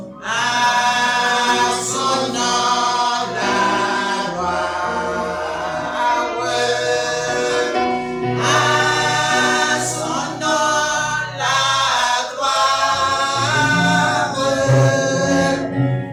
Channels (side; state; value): both; identical; correlation 1.00